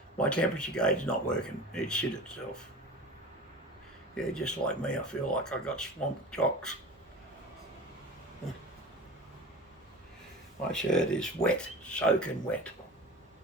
My temperature gauge is not working. It shit itself. Yeah, just like me, I feel like I got swamp jocks. My shirt is wet, soaking wet.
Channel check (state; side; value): normal; both; correlation 0.35